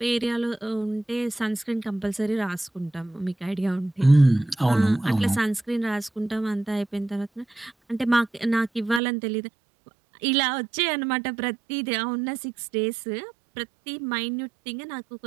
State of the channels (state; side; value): drops out; left; at 9.0 s